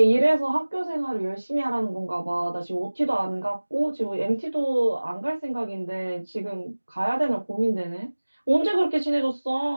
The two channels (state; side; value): inverted; both; correlation -1.00